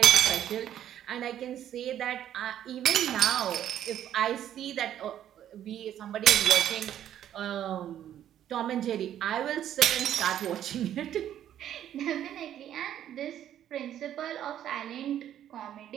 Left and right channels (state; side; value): quieter; left; 10.9 dB